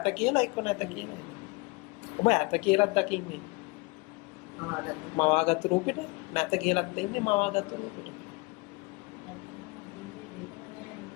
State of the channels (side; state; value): right; quieter; 26.9 dB